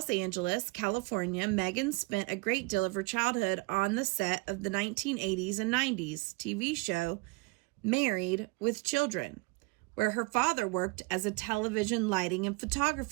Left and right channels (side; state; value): left; quieter; 25.8 dB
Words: Angeles, California, Meghan spent a great deal of her childhood on the set of the 1980s and 90s TV show Married with Children, where her father worked as a television lighting and